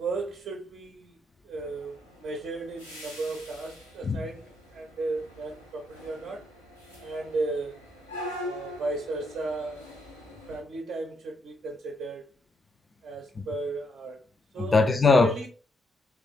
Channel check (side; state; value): both; normal; correlation 0.76